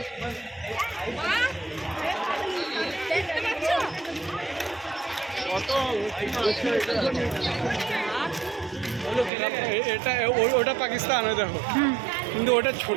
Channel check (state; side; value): drops out; left; at 9.3 s